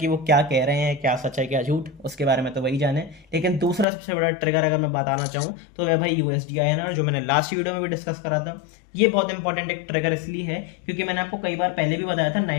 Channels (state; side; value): drops out; right; at 3.9 s